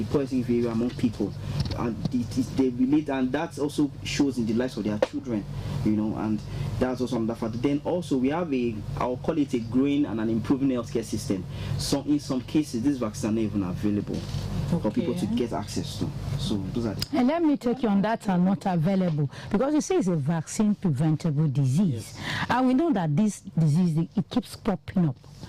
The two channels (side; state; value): both; identical; correlation 1.00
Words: poor health-seeking behavior among people, and they relate, and that also shows in the lives of their children. And That's also another factor. Then also we have I'll call it a growing and an improving healthcare system. So in some cases, these vaccines are not even available for people to get access to. So those are and let me take you on that are not available, because you say it's a vaccine preventable disease. Yes. And we know that this disease, it keeps popping up.